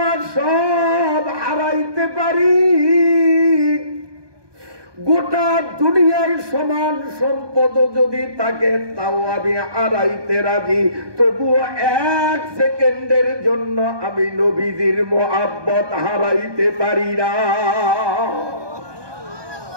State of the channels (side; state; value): left; late; 1.2 ms